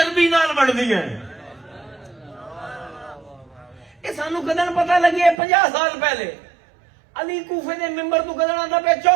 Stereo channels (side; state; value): left; drops out; at 5.4 s